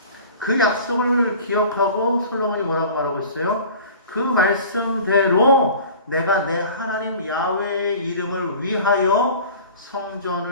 그 약속을 기억하고 솔로몬이 뭐라고 말하고 있어요? 그 말씀대로 내가 내 하나님 야훼의 이름을 위하여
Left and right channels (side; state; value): both; inverted; correlation -0.42